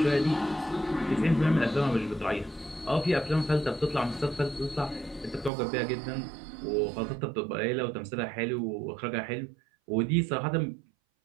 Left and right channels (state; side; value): drops out; left; at 5.5 s